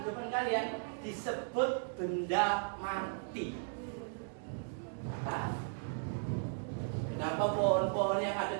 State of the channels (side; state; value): left; silent; digital silence